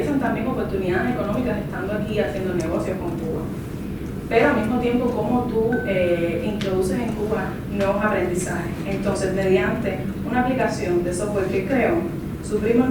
también oportunidades económicas estando aquí haciendo negocios con Cuba. Pero al mismo tiempo cómo tú introduces en Cuba nuevos aprendizajes. Entonces, mediante una aplicación de software que creó, su primo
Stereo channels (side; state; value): both; identical; correlation 1.00